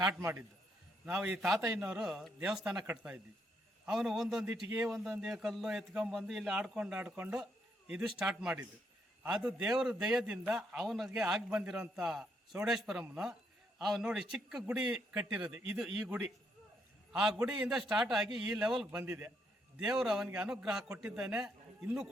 ಮಾಡಿದ್ದು. ನಾವು ಈ ತಾತಯ್ಯನವರು ದೇವಸ್ಥಾನ ಕಟ್ತಾ ಇದ್ವಿ. ಅವನು ಒಂದೊಂದು ಇಟ್ಟಿಗೆ ಒಂದೊಂದೇ ಕಲ್ಲು ಎತ್ಕೊಂಡ್ಬಂದು ಇಲ್ಲಿ ಆಡ್ಕೊಂಡು ಇದು ಸ್ಟಾರ್ಟ್ ಮಾಡಿದ್ದು. ಅದು ದೇವರ ದಯದಿಂದ ಅವನಿಗೆ ಆಗಿ ಬಂದಿರೋಂಥ ಚೌಡೇಶ್ವರಮ್ಮನ ಅವನು ನೋಡಿ ಚಿಕ್ಕ ಗುಡಿ ಕಟ್ಟಿರೋದು. ಇದು ಈ ಗುಡಿ, ಆ ಗುಡಿಯಿಂದ ಸ್ಟಾರ್ಟ್ ಆಗಿ ಈ ಲೆವೆಲ್ಗೆ ಬಂದಿದೆ. ದೇವರು ಅವನಿಗೆ ಅನುಗ್ರಹ ಕೊಟ್ಟಿದ್ದಾನೆ, ಇನ್ನೂ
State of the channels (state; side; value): normal; both; correlation 0.75